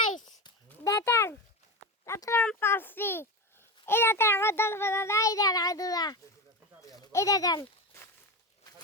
দেখেন তারপর পাচ্ছি এই দেখেন আমার দল বাদা এই দেখেন আদুরা এই দেখেন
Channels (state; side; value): normal; both; correlation 0.21